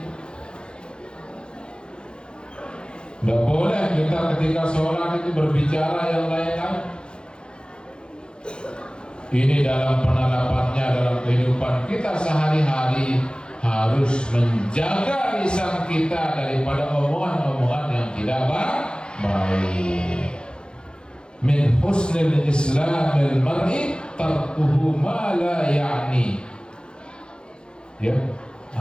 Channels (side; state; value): right; late; 0.050 ms